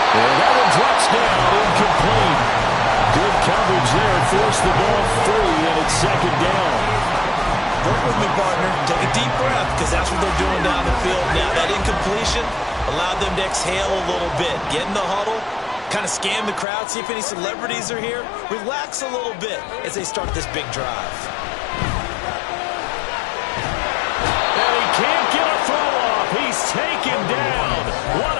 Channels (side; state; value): right; drops out; at 16.7 s